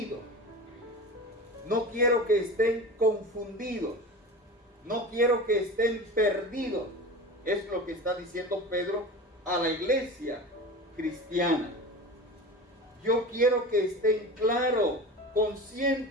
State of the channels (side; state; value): both; normal; correlation 0.31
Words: No quiero que estén confundidos. No quiero que estén perdidos. Es lo que está diciendo Pedro a la iglesia cristiana. Yo quiero que estén claros,